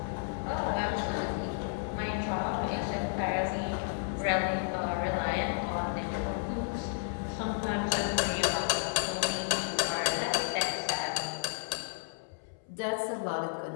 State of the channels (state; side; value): silent; right; 56 dB below the other